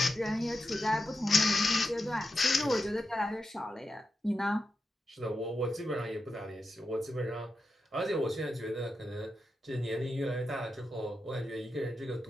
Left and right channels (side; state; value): both; normal; correlation 0.89